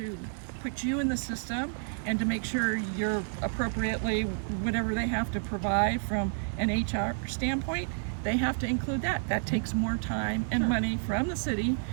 put you in the system and to make sure you're appropriately, whatever they have to provide from an HR standpoint, they have to include that. That takes more time and money from the city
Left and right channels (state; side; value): silent; left; digital silence